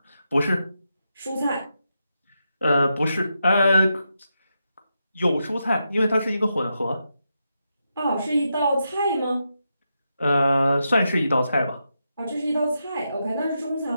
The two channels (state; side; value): inverted; both; correlation -0.85